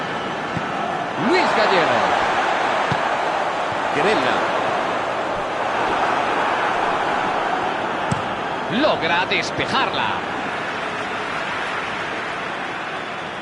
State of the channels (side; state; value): both; identical; correlation 1.00